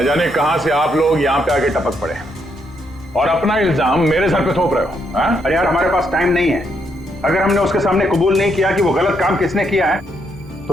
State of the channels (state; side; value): normal; both; correlation 0.76